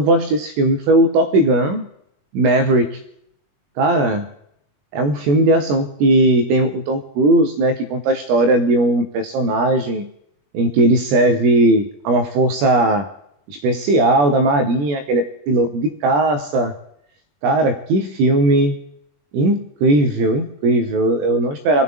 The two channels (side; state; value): left; late; 21 ms